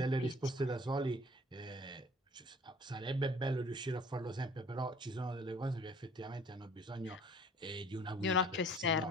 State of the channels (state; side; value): normal; both; correlation 0.51